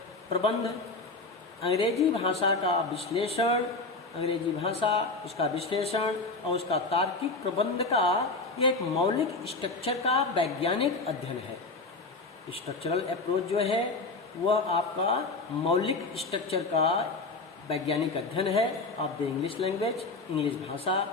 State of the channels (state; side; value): quieter; right; 3.5 dB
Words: प्रबंध, अंग्रेजी भाषा का विश्लेषण, अंग्रेजी भाषा, उसका विश्लेषण और उसका तार्किक प्रबंध का यह एक मौलिक स्ट्रक्चर का वैज्ञानिक अध्ययन है। स्ट्रक्चरल अप्रोच जो है वह आपका मौलिक स्ट्रक्चर का वैज्ञानिक अध्ययन है of the English language, English भाषा,